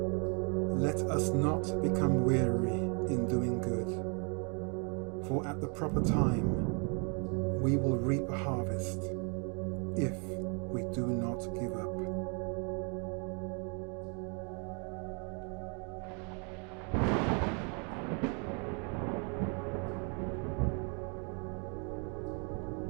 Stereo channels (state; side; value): quieter; left; 36.6 dB